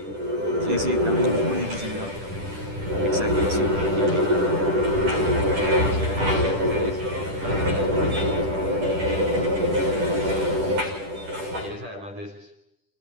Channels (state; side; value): late; left; 10 ms